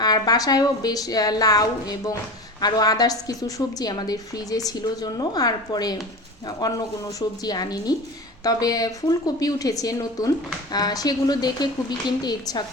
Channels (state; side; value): normal; both; correlation 0.31